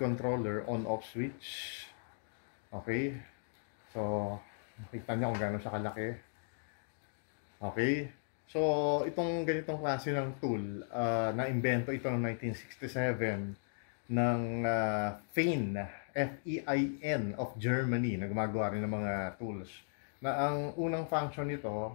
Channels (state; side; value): silent; right; digital silence